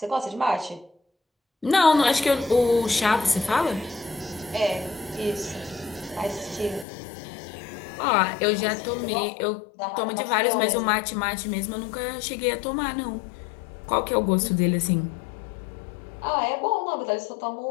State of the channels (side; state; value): right; drops out; at 6.9 s